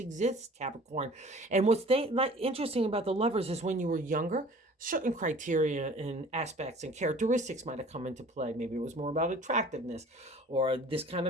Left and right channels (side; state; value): both; normal; correlation 0.47